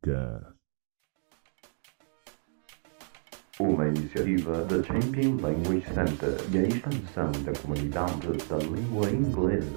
Uma iniciativa da Champion Language Center e a expansão da comunidade da língua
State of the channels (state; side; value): silent; left; digital silence